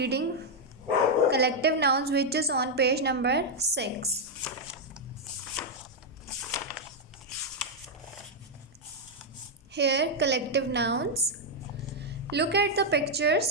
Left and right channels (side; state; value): both; normal; correlation 0.00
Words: collective nouns, which is on page number 6. Here, collective nouns. Look at the